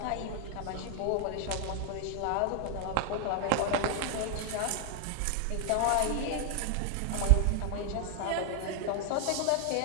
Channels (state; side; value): different; both; correlation 0.00